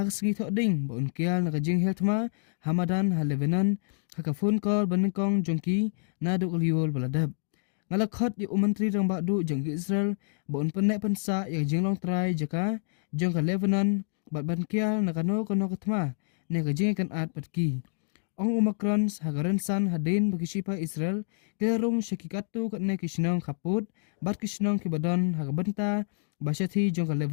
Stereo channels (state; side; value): silent; right; digital silence